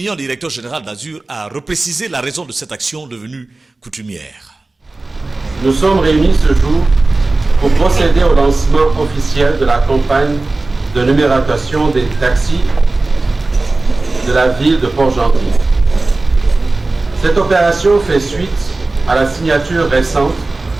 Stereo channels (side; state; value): left; quieter; 3.2 dB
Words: directeur général d'Azur a reprécisé la raison de cette action devenue coutumière. Nous sommes réunis ce jour pour procéder au lancement officiel de la campagne de numérotation des taxis de la ville de Port-Gentil. Cette opération fait suite à la signature récente